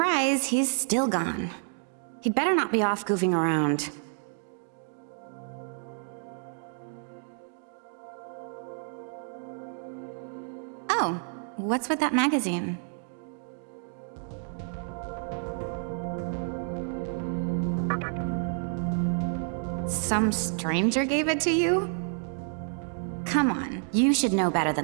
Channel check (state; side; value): silent; left; 57 dB below the other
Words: he's still gone. He'd better not be off goofing around. Oh, what's with that magazine? Some stranger gave it to you? Come on, you should know better